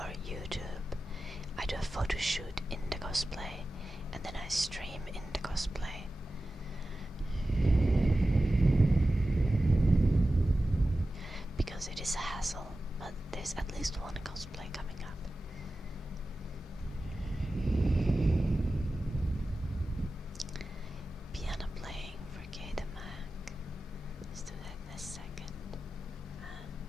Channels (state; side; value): normal; both; correlation 0.94